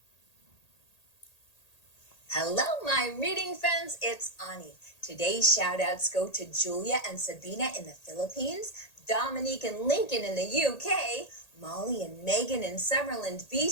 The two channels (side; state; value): right; late; 1.8 ms